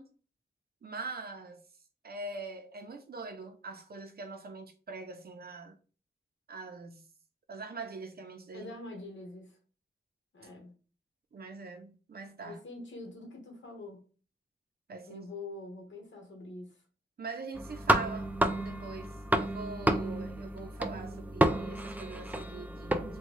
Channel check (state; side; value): normal; both; correlation 0.69